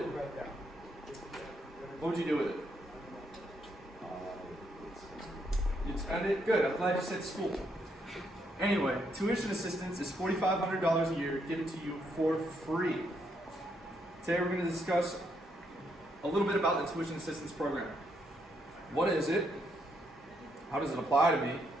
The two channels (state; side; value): normal; both; correlation 0.76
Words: What would you do with it? You'd spend it? Good, I'm glad you said school. Anyway, tuition assistance is $4,500 a year given to you for free. Today we're going to discuss a little bit about the tuition assistance program. What is it? How does it apply to me?